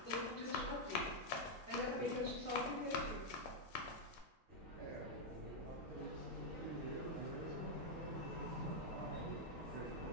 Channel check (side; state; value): both; normal; correlation -0.01